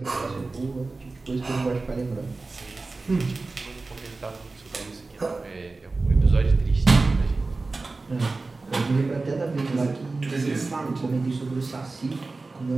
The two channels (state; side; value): quieter; left; 3.6 dB